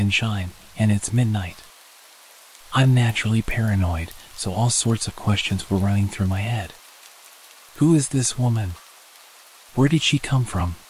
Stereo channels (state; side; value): identical; both; correlation 1.00